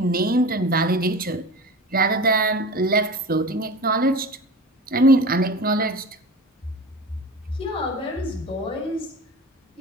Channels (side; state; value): both; normal; correlation 0.33